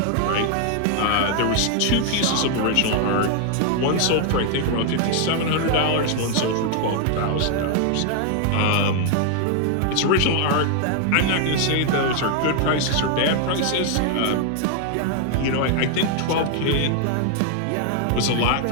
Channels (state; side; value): different; both; correlation 0.00